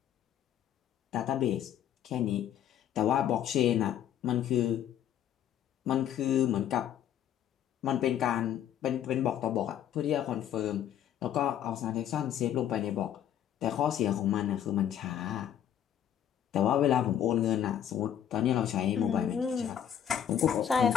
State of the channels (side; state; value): right; quieter; 10.1 dB